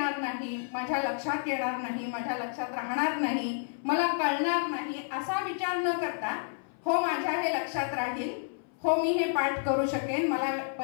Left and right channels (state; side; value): silent; right; 58 dB below the other